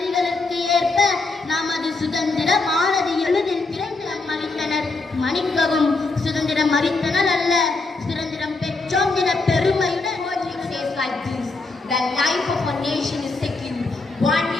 ஏற்ப நமது சுதந்திரமானது எளிதில் பிறந்து மறித்தனர். மன்னிக்கவும், சுதந்திரம் மறித்தனர் அல்ல, சுதந்திரம் பெற்றோம் என பெருமையுடன். The life of a nation is secure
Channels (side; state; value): right; quieter; 3.6 dB